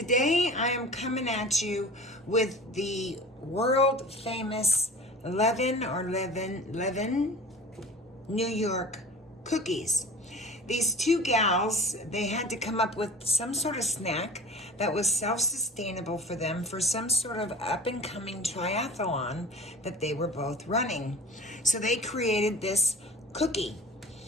I am coming at you with the world famous Levine New York cookies. These two gals, they had to come up with some sort of snack that was self-sustainable for them for some sort of up-and-coming triathlon that they were both running. So they created this cookie,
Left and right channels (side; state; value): both; normal; correlation 0.38